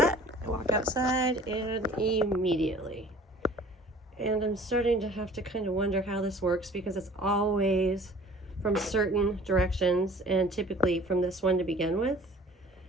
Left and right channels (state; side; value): normal; both; correlation 0.49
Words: I walk outside and immediately. And I'm starting to have to kind of wonder how this works, because it's always from certain directions, and typically from this one to begin with.